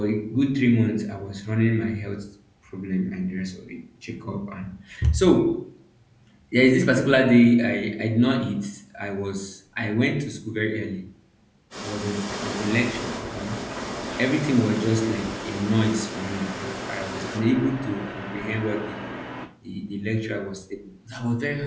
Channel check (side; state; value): both; identical; correlation 1.00